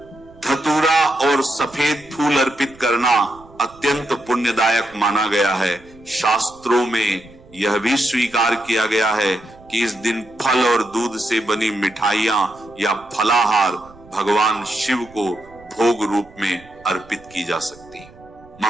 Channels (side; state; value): right; noise; rumble, 25 dB below the sound